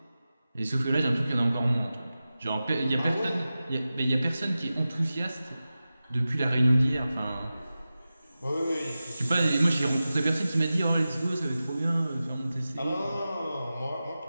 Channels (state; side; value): inverted; both; correlation -0.94